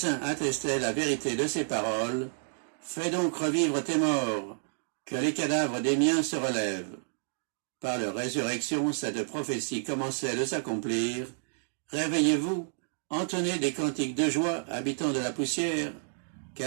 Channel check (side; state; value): left; silent; digital silence